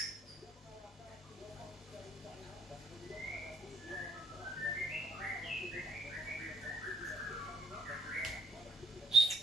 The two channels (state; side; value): normal; both; correlation 0.74